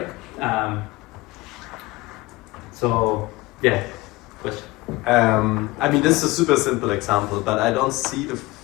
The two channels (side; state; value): right; quieter; 21.0 dB